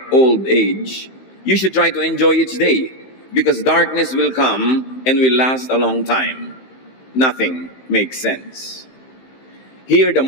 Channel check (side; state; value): right; late; 15 ms